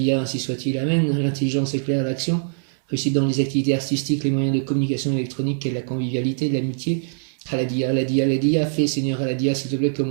ainsi soit-il. Amen. L'intelligence éclaire l'action. Réussite dans les activités artistiques, les moyens de communication électronique et la convivialité, l'amitié. Aladia, Aladia, Aladia, fais, Seigneur Aladia, s'il te plaît, que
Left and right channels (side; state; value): left; silent; 63 dB below the other